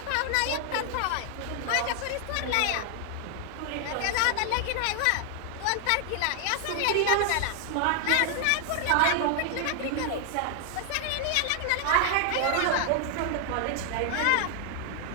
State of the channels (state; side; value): different; both; correlation 0.00